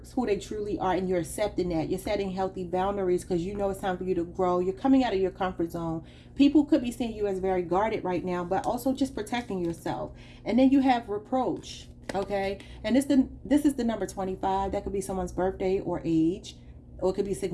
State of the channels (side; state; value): both; identical; correlation 1.00